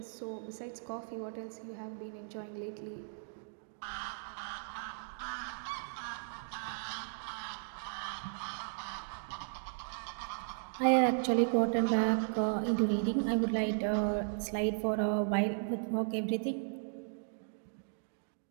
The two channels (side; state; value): left; silent; digital silence